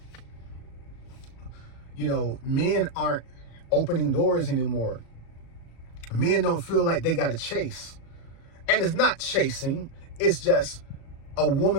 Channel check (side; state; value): right; late; 37 ms